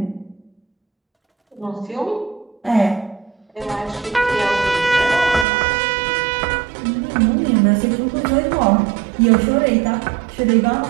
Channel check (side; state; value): left; drops out; at 5.5 s